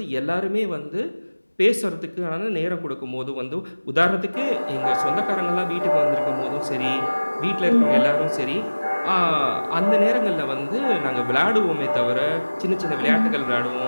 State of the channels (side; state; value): both; inverted; correlation -1.00